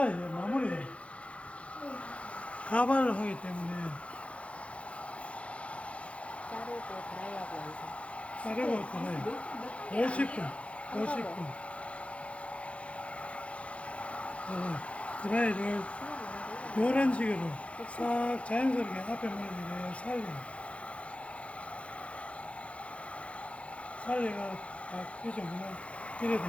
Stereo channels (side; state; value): right; late; 0.062 ms